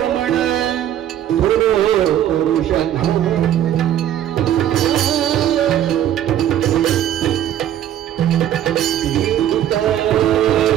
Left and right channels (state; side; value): quieter; left; 11.1 dB